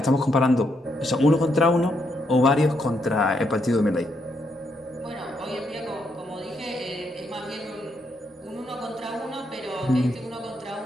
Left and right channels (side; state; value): both; normal; correlation 0.77